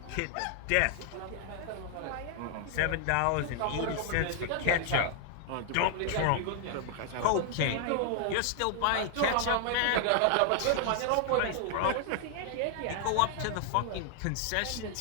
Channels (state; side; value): different; both; correlation 0.00